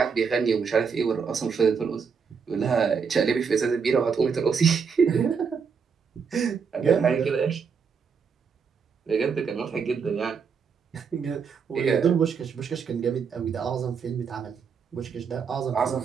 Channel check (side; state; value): left; quieter; 6.1 dB